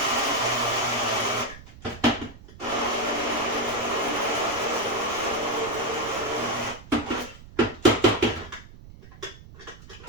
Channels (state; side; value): noise; right; rumble, 18 dB below the sound